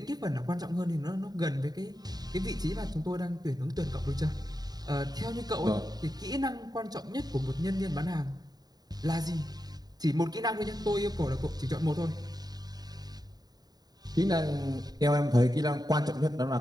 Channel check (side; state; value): left; late; 0.19 ms